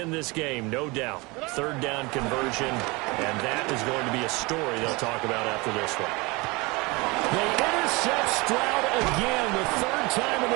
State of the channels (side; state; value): left; quieter; 25.2 dB